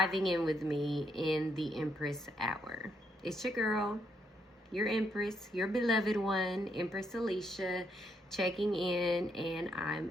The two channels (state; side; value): normal; both; correlation 0.75